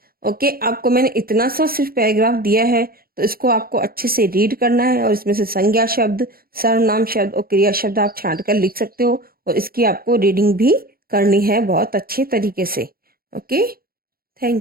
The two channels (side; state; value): left; late; 0.43 ms